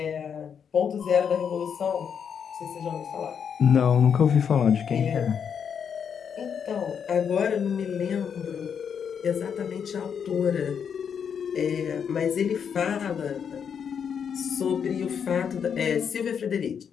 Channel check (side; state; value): right; quieter; 7.4 dB